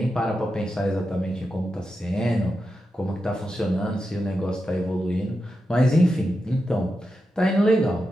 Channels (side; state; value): both; normal; correlation 0.89